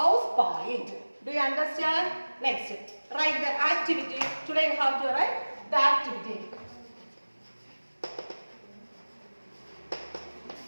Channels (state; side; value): inverted; both; correlation -1.00